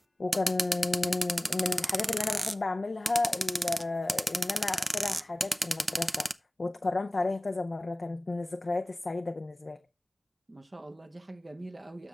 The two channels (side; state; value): both; normal; correlation 0.98